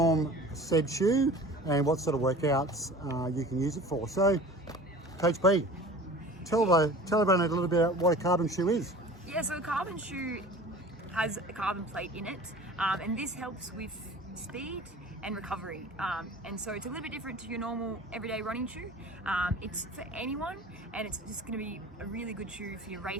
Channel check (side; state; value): both; normal; correlation 0.42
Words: said shoe, and what sort of workouts you can use it for. So, Coach B, tell everyone a little bit about what a carbon shoe is. Yeah, so a carbon shoe has a carbon plate in it, and this helps with speed and recovery. And so it's a little bit different to your normal everyday running shoe. It's for anyone, and it's just going to be a really good shoe for your